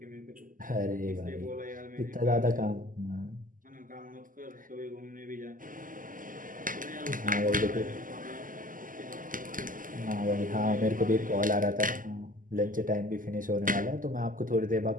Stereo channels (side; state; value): left; late; 0.39 ms